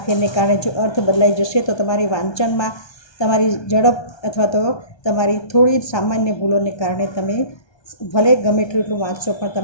કારણે જો અર્થ બદલાઈ જશે તો તમારી વાંચનમાં તમારી ઝડપ અથવા તો તમારી થોડી સામાન્ય ભૂલોને કારણે તમે ભલે ગમે એટલું વાંચશો પણ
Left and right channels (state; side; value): late; right; 1.2 ms